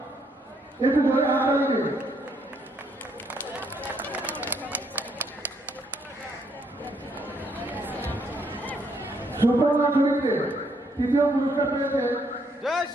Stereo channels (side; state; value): both; normal; correlation 0.71